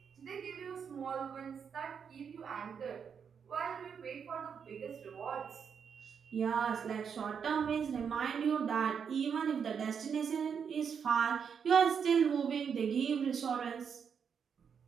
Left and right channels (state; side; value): quieter; left; 6.9 dB